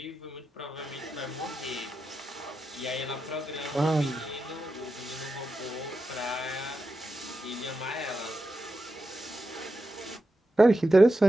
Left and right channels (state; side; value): normal; both; correlation 0.89